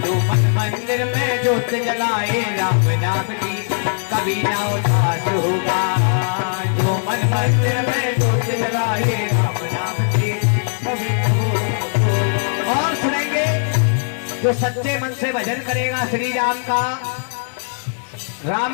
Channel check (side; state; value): right; silent; digital silence